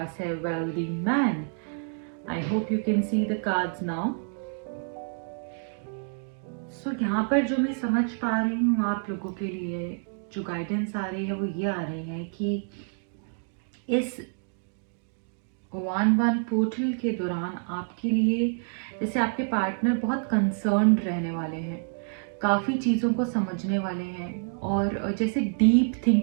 है wealthy man. I hope you can see the cards now. So यहाँ पर जो मैं समझ पा रही हूँ आप लोगों के लिए जो गाइडेंस आ रही है वो ये आ रही है कि इस 111 पोर्टल के दौरान आपके लिए जैसे आपके पार्टनर बहुत कंसर्न्ड रहने वाले हैं, काफ़ी चीज़ों को समझने वाले हैं, और जैसे डीप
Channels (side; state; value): left; silent; 56 dB below the other